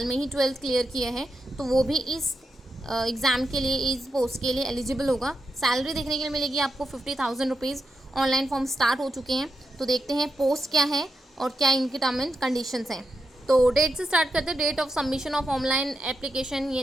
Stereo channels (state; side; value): normal; both; correlation 0.86